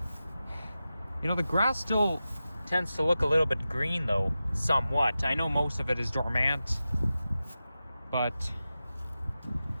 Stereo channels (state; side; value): inverted; both; correlation -0.93